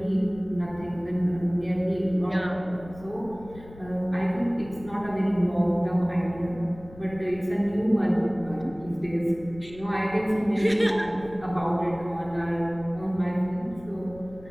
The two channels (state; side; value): noise; left; rumble, 18 dB below the sound